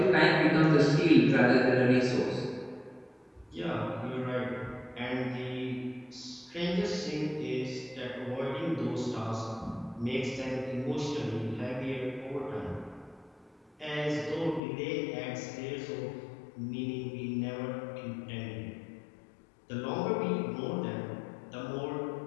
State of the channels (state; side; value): drops out; right; at 14.6 s